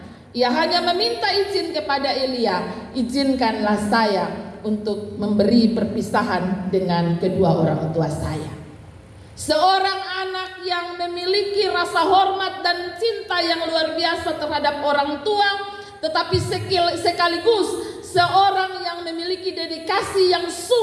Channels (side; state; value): both; identical; correlation 1.00